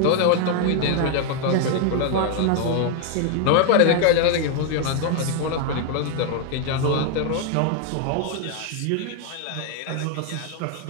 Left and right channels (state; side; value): different; both; correlation 0.00